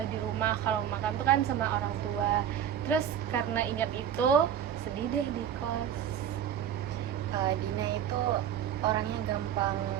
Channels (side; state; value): left; quieter; 9.6 dB